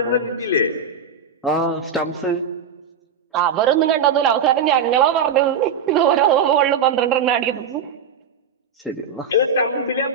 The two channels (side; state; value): left; quieter; 5.8 dB